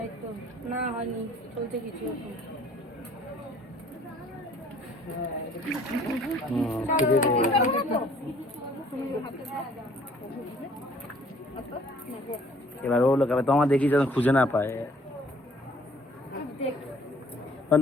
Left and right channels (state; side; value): normal; both; correlation 0.57